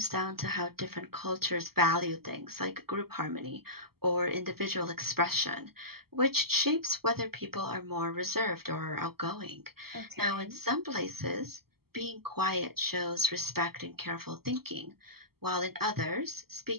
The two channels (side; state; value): left; late; 0.95 ms